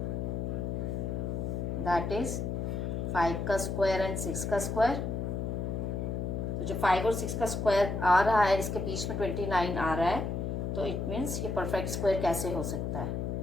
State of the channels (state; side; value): noise; left; hum, 2 dB below the sound